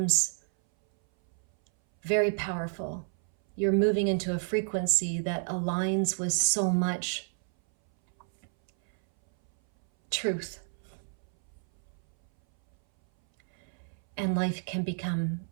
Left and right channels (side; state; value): left; silent; 58 dB below the other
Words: very powerful. You're moving into a frequency that aligns with so much truth. And life can become